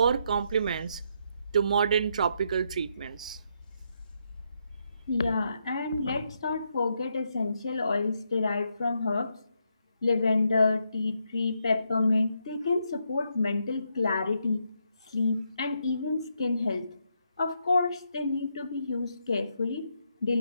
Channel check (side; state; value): both; inverted; correlation -0.78